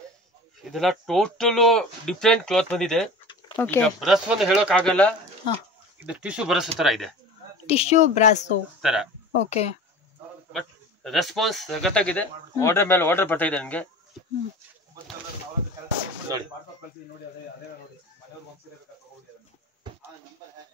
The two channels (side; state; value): both; normal; correlation 0.37